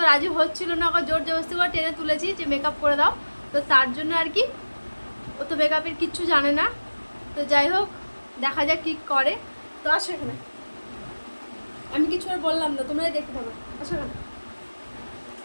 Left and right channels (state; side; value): inverted; both; correlation -1.00